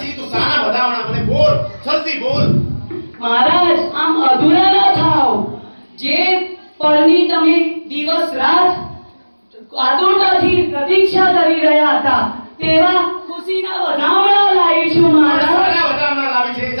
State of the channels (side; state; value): both; inverted; correlation -1.00